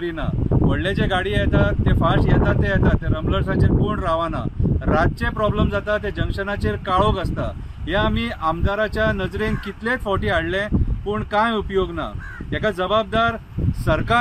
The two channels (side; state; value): both; identical; correlation 1.00